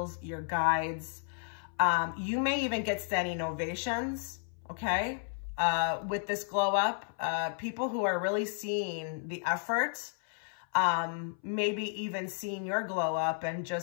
your guides. You may even get standing ovations, okay? With this glow up, people who are really seeing the effort, maybe even seeing your glow up and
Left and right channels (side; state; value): right; silent; 56 dB below the other